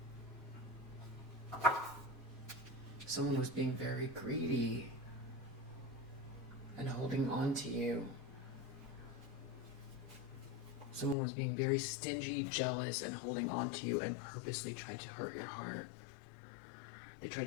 Someone was being very greedy and holding on to you. Someone was being very stingy, jealous, and holding on to you, and purposely tried to hurt your heart. They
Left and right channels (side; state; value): right; drops out; at 11.2 s